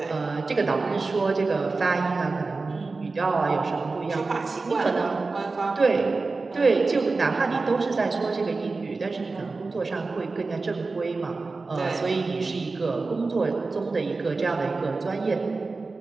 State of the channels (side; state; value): left; quieter; 3.8 dB